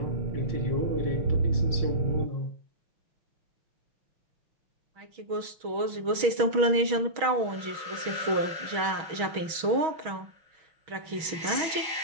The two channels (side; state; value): left; late; 6.3 ms